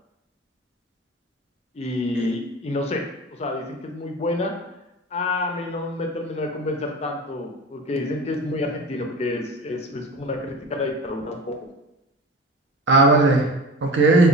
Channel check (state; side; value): normal; both; correlation 0.34